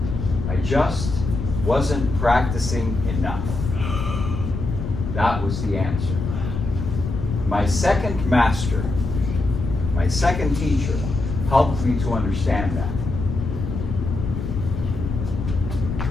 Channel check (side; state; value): left; noise; rumble, 4 dB below the sound